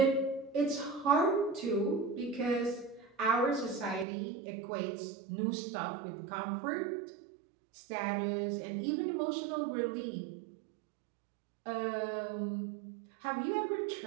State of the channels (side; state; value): left; drops out; at 4.0 s